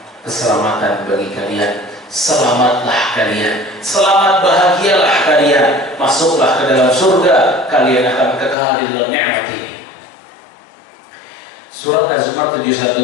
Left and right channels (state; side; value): drops out; right; at 8.6 s